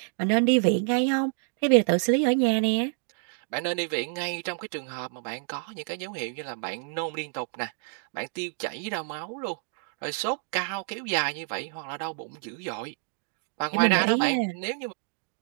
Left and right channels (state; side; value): silent; left; 59 dB below the other